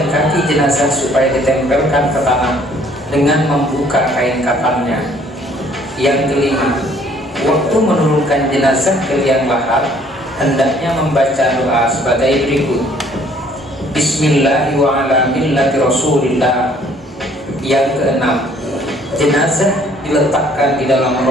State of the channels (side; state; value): both; normal; correlation 0.59